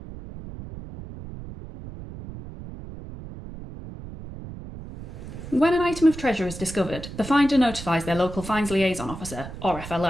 When an item of treasure is discovered, the finder notifies their local fines liaison officer, or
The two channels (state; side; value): noise; right; rumble, 12 dB below the sound